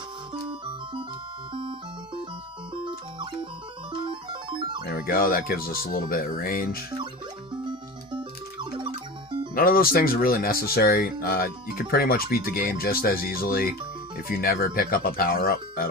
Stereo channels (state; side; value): normal; both; correlation 0.31